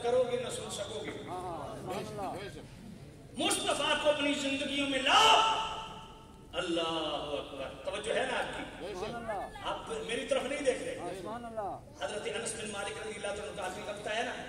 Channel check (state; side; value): identical; both; correlation 1.00